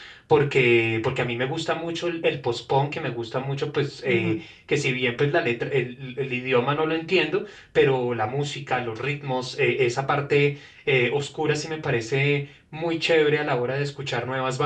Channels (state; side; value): identical; both; correlation 1.00